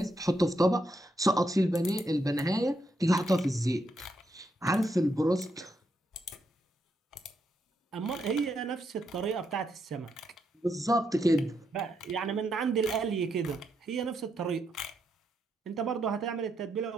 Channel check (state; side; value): normal; both; correlation 0.80